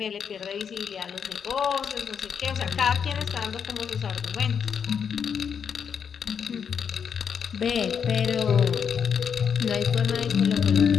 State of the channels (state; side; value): quieter; right; 7.2 dB